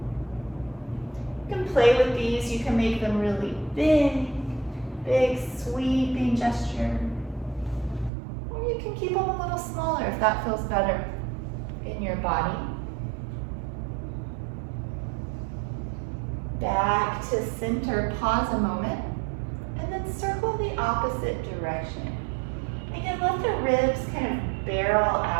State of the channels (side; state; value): left; drops out; at 8.1 s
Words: You can play with these. You can make them really big sweeping gesture. Or you can keep them a little smaller if that feels better in your body. Back to center, pause a moment, and then circle the opposite direction. Again, let the ribs kind of barrel